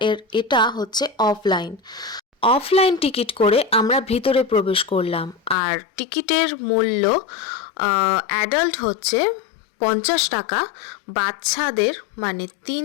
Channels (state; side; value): drops out; right; at 5.6 s